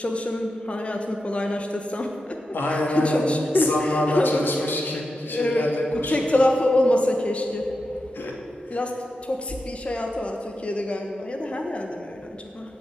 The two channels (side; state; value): both; normal; correlation 0.89